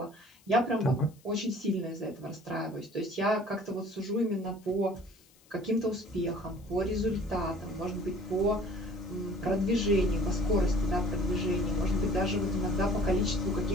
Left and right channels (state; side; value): noise; left; hiss, 29 dB below the sound